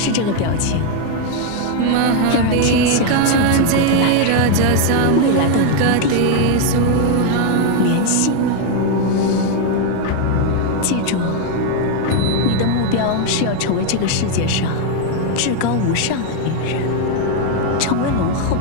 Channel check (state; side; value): different; both; correlation 0.01